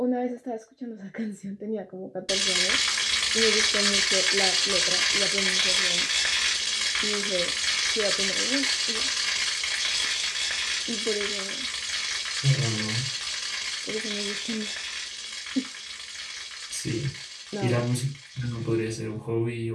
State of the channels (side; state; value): both; identical; correlation 1.00